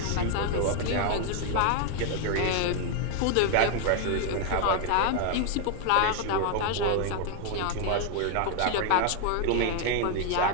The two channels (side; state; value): both; different; correlation 0.01